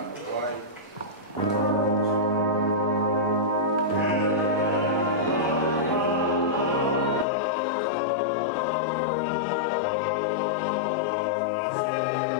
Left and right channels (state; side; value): drops out; right; at 7.2 s